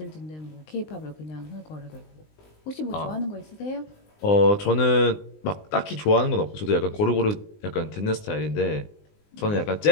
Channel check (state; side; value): late; right; 19 ms